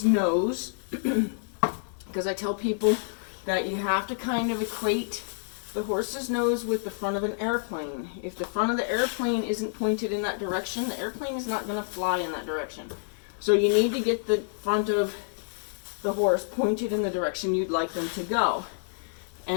nose, because I tell people that you have to kind of equate the horse's nose with the front of an airplane. If the front of the airplane isn't pointed in that direction, the airplane is not going to fly in that direction. So you need to get the front of the horse pointed in the direction you'd like them to go.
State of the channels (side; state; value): right; silent; digital silence